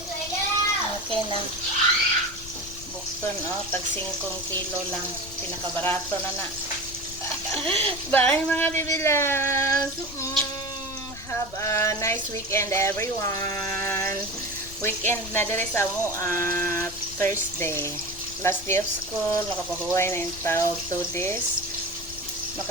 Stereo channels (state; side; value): noise; left; rumble, 15 dB below the sound